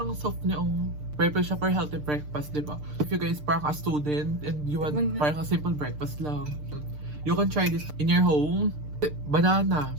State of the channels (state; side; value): late; left; 6.7 ms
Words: soft niya yung... Perfect siya for healthy breakfast, di ba? If you guys parang a student and you want parang a simple breakfast lang, you can try this in your home. Banana.